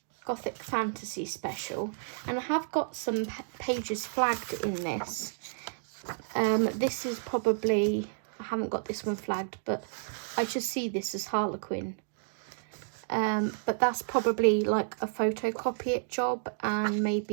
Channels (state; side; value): silent; left; digital silence